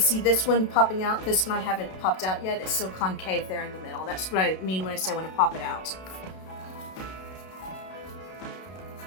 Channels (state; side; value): late; right; 32 ms